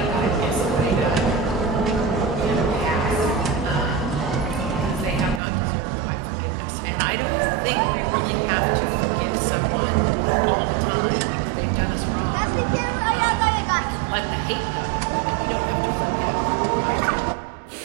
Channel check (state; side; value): drops out; left; at 5.4 s